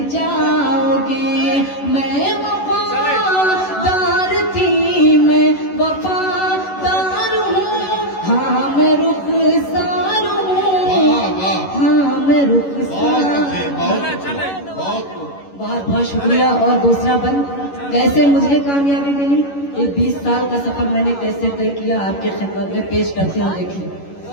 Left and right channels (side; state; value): right; late; 11 ms